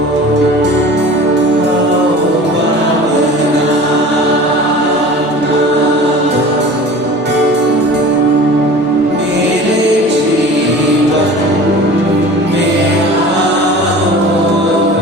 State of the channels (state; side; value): normal; both; correlation 0.40